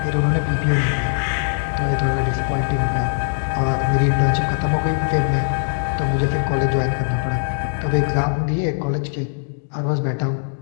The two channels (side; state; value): right; silent; digital silence